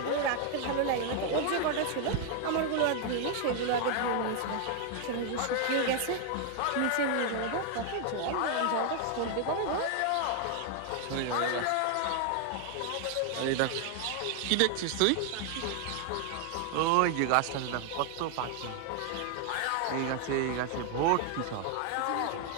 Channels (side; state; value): both; different; correlation 0.00